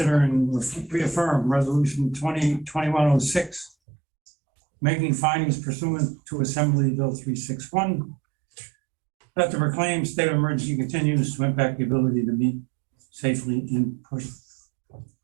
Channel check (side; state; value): left; drops out; at 3.7 s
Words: and reaffirm resolution 2021-06, making findings pursuant to Assembly Bill 361, that the proclaimed state of emergency continues to impact the ability to meet safely in person.